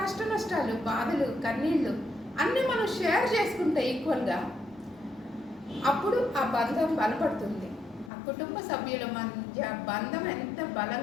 కష్ట నష్టాలు, బాధలు, కన్నీళ్ళు అన్నీ మనం షేర్ చేసుకుంటే ఈక్వల్గా, అప్పుడు ఆ బంధం బలపడుతుంది. ఆ కుటుంబ సభ్యుల మధ్య బంధం ఎంత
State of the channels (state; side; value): drops out; right; at 8.1 s